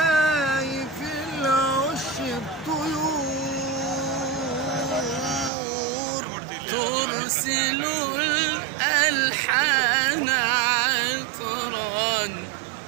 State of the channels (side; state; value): left; drops out; at 5.5 s